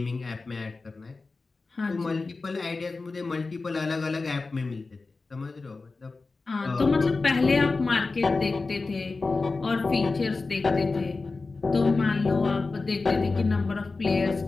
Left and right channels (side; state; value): right; quieter; 3.8 dB